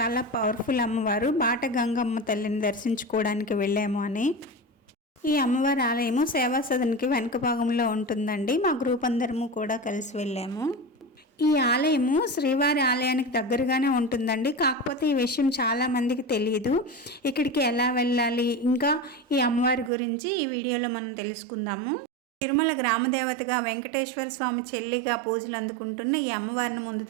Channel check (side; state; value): left; drops out; at 19.9 s